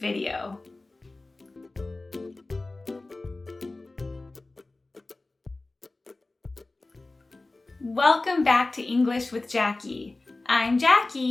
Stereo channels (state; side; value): quieter; right; 3.1 dB